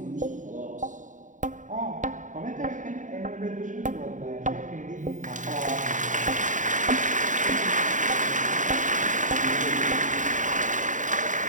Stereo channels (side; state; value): left; late; 0.37 ms